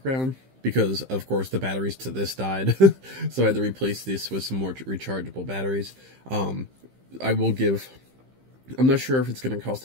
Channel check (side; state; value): left; late; 15 ms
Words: because, of course, the batteries to this died, so I had to replace this with some more rechargeable batteries. I will give... I'm not sure if it's going to cost